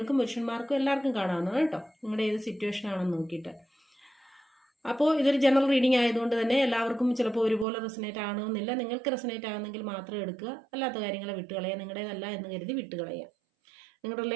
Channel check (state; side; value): drops out; left; at 7.7 s